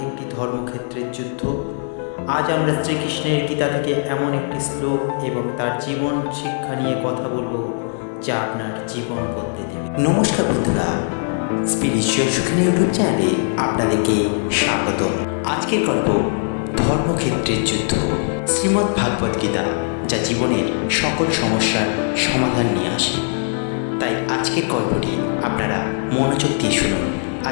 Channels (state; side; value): silent; right; 65 dB below the other